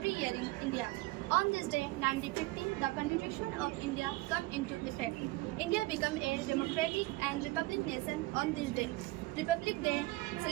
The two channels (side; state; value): left; quieter; 20.8 dB